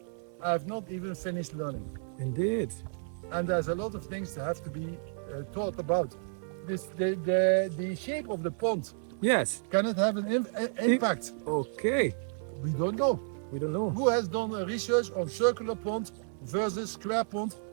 I have not even finished learning. Indeed. And there's a lot of things that have to be taught about. The shape of the pond, Yes. can it have an impact? Okay. We don't know. We don't know. Who has done a research on circular pond versus square pond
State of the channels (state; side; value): silent; left; 57 dB below the other